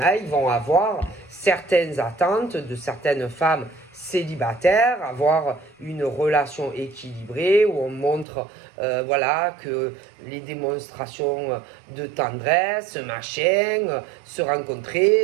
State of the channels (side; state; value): left; drops out; at 8.2 s